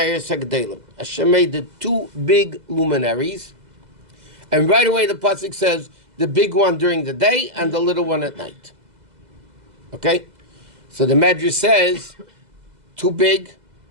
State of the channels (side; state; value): left; late; 2.0 ms